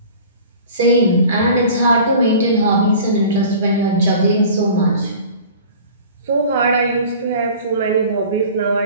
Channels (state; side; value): inverted; both; correlation -0.43